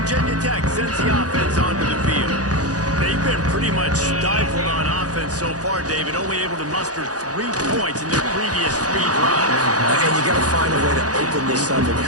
Tech sends the offense onto the field. They've been pretty much stifled on offense so far, David, only able to muster 3 points in their previous 3 drives. And you got to find a way to open this up and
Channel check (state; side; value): late; left; 0.67 ms